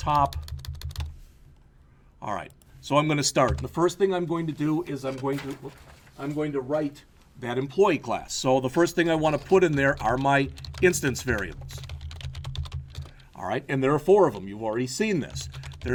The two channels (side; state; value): both; identical; correlation 1.00